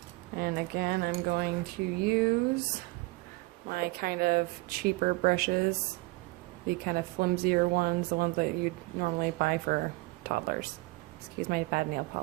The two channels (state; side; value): quieter; left; 22.8 dB